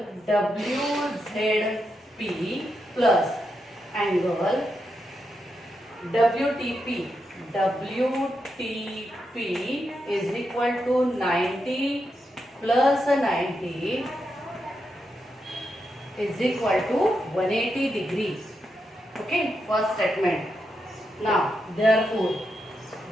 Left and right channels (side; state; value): both; normal; correlation 0.84